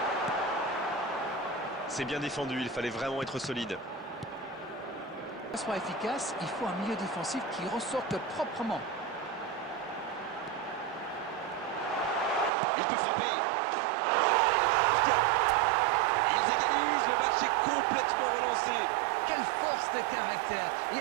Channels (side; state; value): left; drops out; at 12.5 s